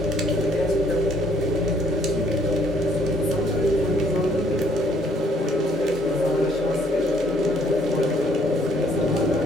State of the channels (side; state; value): both; normal; correlation 0.63